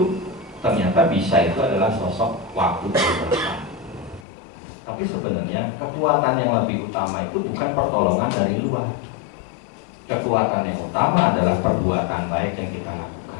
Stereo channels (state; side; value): drops out; right; at 4.2 s